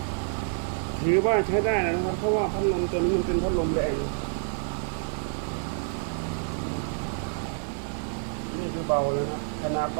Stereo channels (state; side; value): silent; left; 59 dB below the other